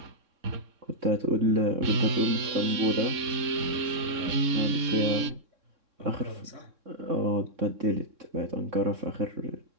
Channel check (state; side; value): late; left; 3.6 ms